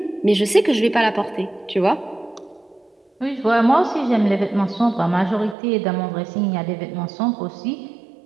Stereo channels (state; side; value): drops out; left; at 5.6 s